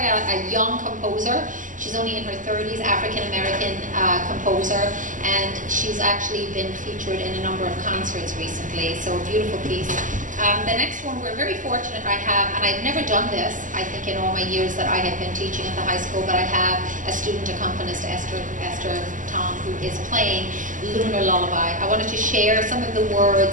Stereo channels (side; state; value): left; late; 0.38 ms